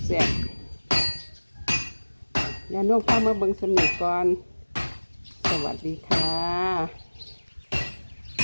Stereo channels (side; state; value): both; inverted; correlation -1.00